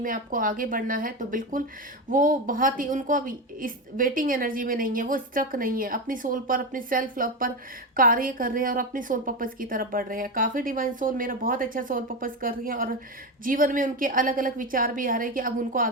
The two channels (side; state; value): both; normal; correlation 0.16